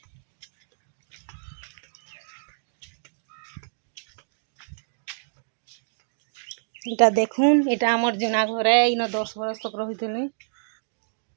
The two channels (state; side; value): silent; left; digital silence